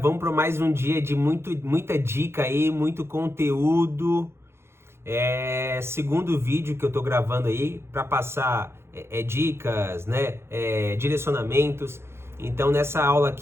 para mais um dia de muita dica aí, muito conteúdo. Segundo vídeo que eu tô gravando aí para passar dicas, né? Direcionamentos. Então, nessa aula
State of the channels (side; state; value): left; late; 0.12 ms